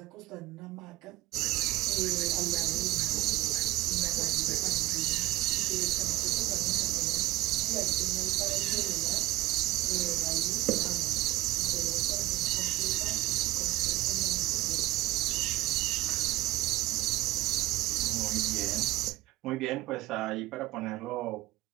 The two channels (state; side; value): quieter; left; 17.9 dB